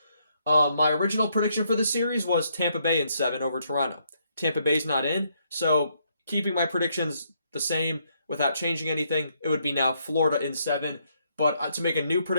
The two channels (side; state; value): both; inverted; correlation -0.74